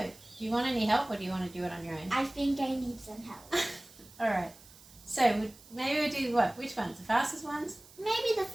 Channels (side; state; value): right; noise; hiss, 22 dB below the sound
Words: Do you want any help or do you want to do it on your own? I think I need some help. Alright, so maybe we'll do what? Which ones? The fastest ones? Maybe the